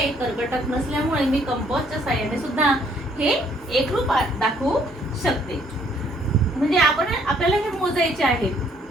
कर्कटक नसल्यामुळे मी कंपासच्या साहाय्याने सुद्धा हे एकरूप दाखवू शकते. म्हणजे आपल्याला हे मोजायचे आहेत.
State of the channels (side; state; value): both; normal; correlation 0.65